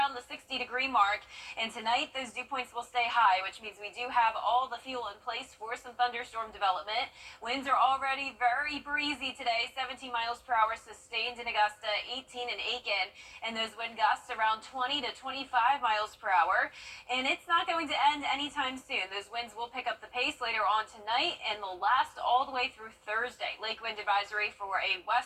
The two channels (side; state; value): both; identical; correlation 1.00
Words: the 60-degree mark. And tonight, those dew points will stay high, which means we do have all the fuel in place for some thunderstorm development. Winds are already very breezy today, 17 miles per hour sustained in Augusta, 18 in Aiken, and those wind gusts around 20 to 25 miles per hour. And it's not going to end anytime soon. Those winds will pick up the pace later on tonight, and they'll last all the way through Thursday. Lake wind advisory for a